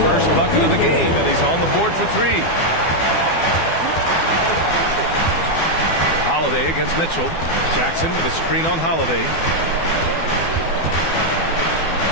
bucket of the game, and he's on the board for three. Holiday against Mitchell. Jackson with a screen on Holiday.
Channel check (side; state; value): right; late; 12 ms